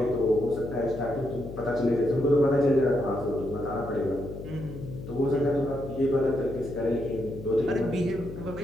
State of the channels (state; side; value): noise; left; hum, 11 dB below the sound